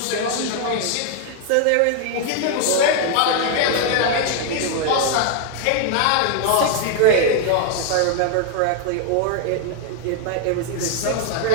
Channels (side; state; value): both; different; correlation 0.00